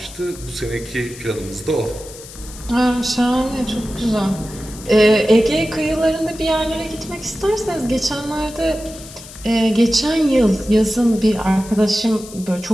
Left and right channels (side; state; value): left; noise; hiss, 16 dB below the sound